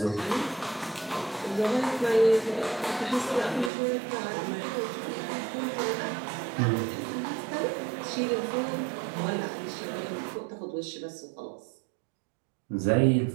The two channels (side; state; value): left; drops out; at 3.7 s